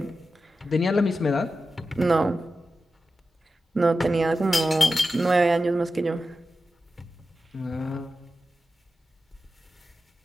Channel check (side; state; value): both; normal; correlation 0.92